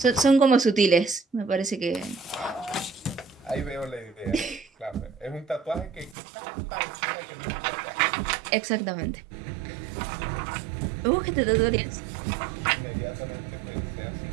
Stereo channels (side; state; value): left; drops out; at 6.2 s